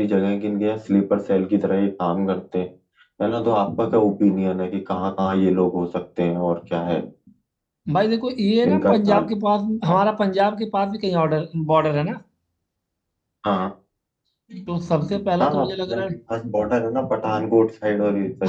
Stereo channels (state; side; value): identical; both; correlation 1.00